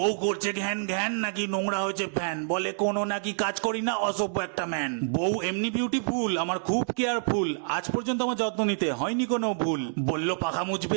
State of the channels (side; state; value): left; silent; digital silence